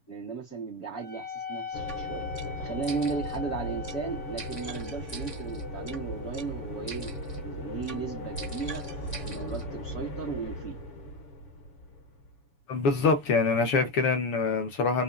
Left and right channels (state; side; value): late; right; 7.1 ms